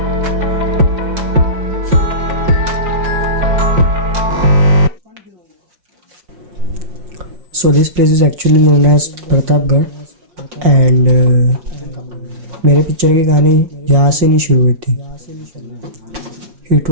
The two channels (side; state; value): left; late; 5.6 ms